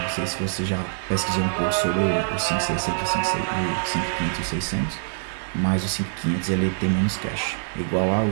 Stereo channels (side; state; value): left; silent; digital silence